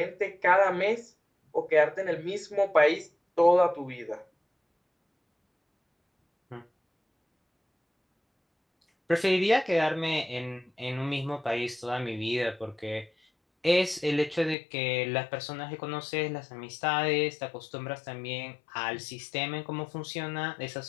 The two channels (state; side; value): drops out; right; at 14.6 s